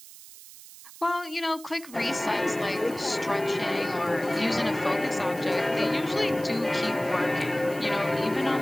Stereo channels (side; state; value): right; noise; hiss, 18 dB below the sound